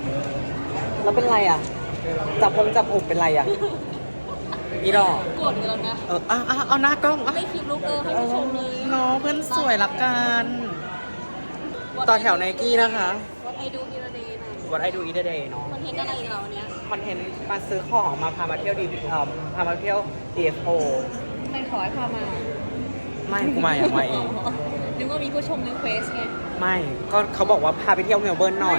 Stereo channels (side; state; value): both; inverted; correlation -1.00